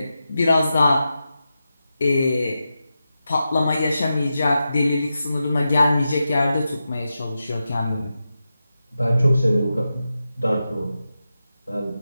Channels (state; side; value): inverted; both; correlation -0.90